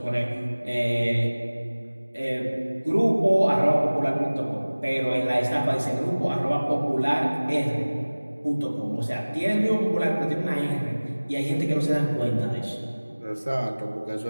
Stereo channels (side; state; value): both; inverted; correlation -1.00